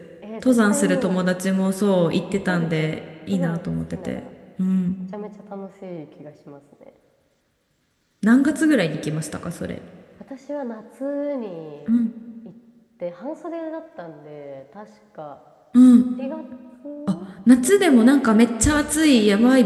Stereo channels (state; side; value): identical; both; correlation 1.00